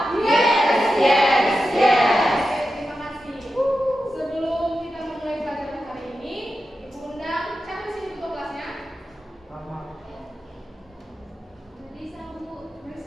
Yes, yes, yes. Oke, terima kasih. Sebelum kita memulai pelajaran hari ini, Ibu undang siapa di sini ketua kelasnya? Melisa, Bu.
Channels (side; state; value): both; normal; correlation 0.91